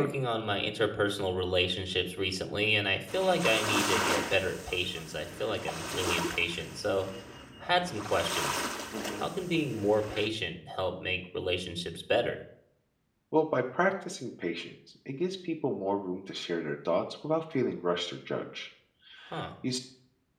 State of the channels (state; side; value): identical; both; correlation 1.00